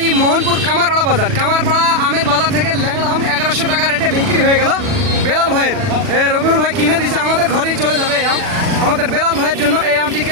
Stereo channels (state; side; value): late; left; 40 ms